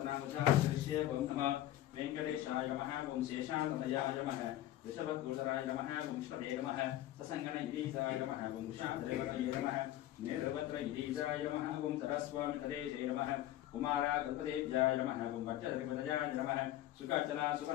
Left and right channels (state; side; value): quieter; right; 13.8 dB